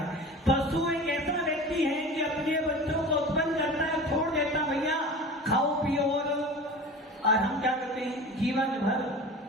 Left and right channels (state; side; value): normal; both; correlation 0.35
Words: पशु एक ऐसा व्यक्ति है कि अपने बच्चों को उत्पन्न करता है, छोड़ देता भैया खाओ पियो, और हम क्या करते हैं जीवन भर,